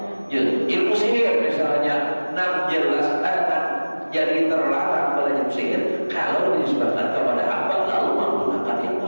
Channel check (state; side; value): inverted; both; correlation -1.00